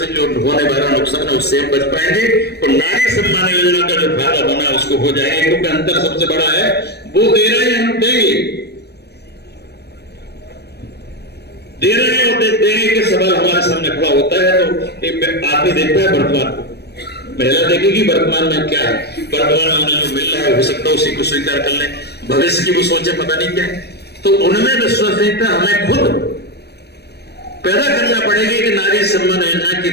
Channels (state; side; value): late; right; 0.48 ms